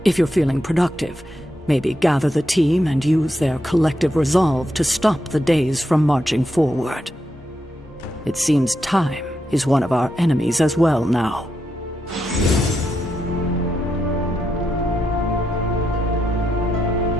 If you're feeling productive, maybe gather the team and use their collective resolve to stop the days from marching forward. It seems time is one of our enemies as well now.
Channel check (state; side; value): normal; both; correlation 0.83